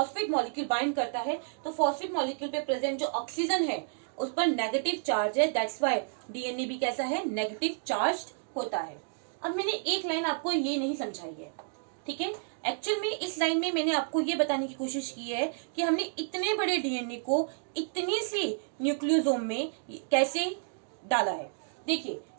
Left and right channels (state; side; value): silent; left; digital silence